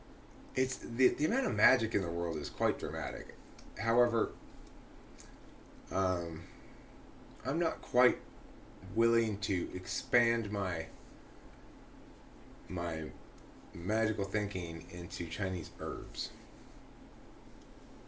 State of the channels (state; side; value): identical; both; correlation 1.00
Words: It's the amount of magic in the world is quite dramatic. However, I'm not quite willing to expand my magical thinking into Chinese herbs.